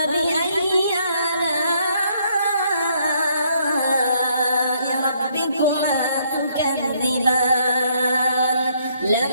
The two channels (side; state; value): both; inverted; correlation -0.69